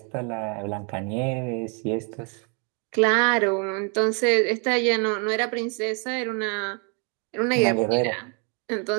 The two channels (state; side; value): quieter; left; 37.1 dB